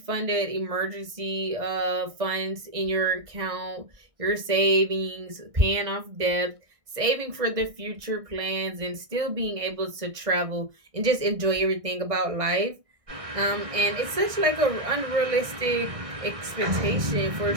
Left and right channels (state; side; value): late; left; 1.6 ms